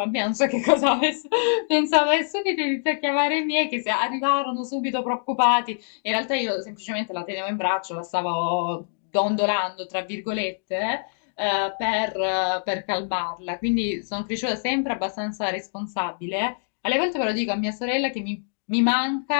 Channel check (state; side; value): silent; right; digital silence